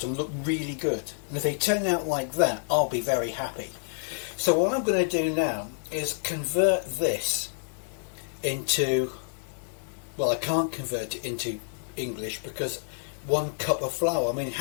look really good. And if they turn out like that, I'll be very happy. So what I'm going to do now is convert this into, well, I can't convert it into English because 1 cup of flour, I mean,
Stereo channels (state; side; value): silent; right; digital silence